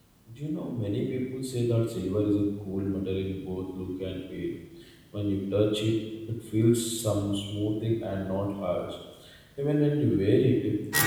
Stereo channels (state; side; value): identical; both; correlation 1.00